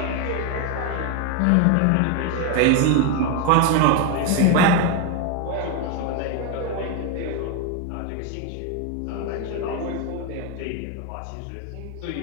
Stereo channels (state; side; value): different; both; correlation 0.02